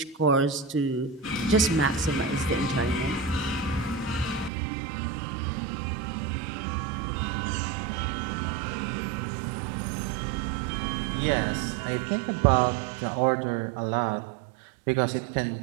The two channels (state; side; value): drops out; left; at 4.5 s